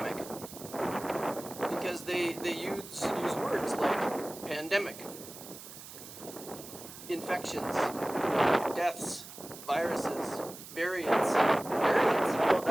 because they use words like pandemic, infections, deaths, viruses, variants, how about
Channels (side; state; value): right; noise; hiss, 14 dB below the sound